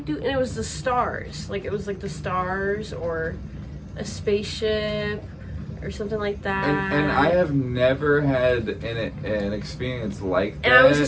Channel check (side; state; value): both; identical; correlation 1.00